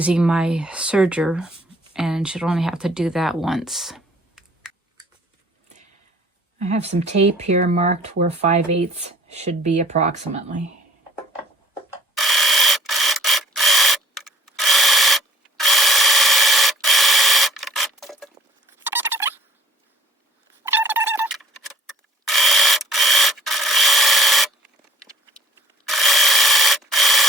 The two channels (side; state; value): both; normal; correlation 0.55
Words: my serger and should only have to do that once. I have some tape here marked where 5/8 should be approximately.